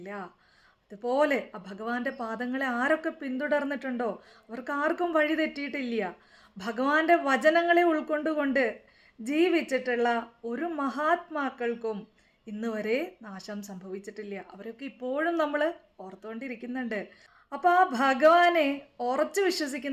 അതുപോലെ ആ ഭഗവാന്റെ പാദങ്ങളെ ആരൊക്കെ പിന്തുടർന്നിട്ടുണ്ടോ അവർക്ക് ആർക്കും വഴി തെറ്റിയിട്ടില്ല. ഭഗവാന്റെ വചനങ്ങളെ ഉൾക്കൊണ്ടുകൊണ്ട് ജീവിച്ചിട്ടുള്ള ഒരു മഹാത്മാക്കൾക്കും ഇന്ന് വരെ നാശം സംഭവിച്ചിട്ടില്ല. അവരൊക്കെ ഇപ്പോഴും നമ്മൾ ഓർത്തുകൊണ്ടിരിക്കുന്നുണ്ട്. അപ്പോൾ ആ ഭഗവാനെ ഉറച്ചു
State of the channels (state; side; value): identical; both; correlation 1.00